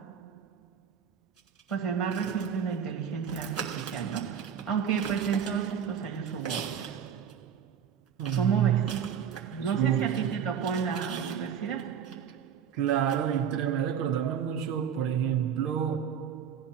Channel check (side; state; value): left; quieter; 8.0 dB